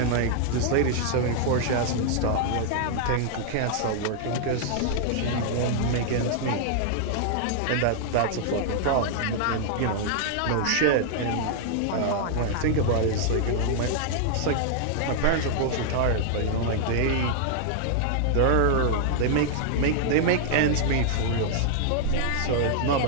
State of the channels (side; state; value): both; different; correlation 0.00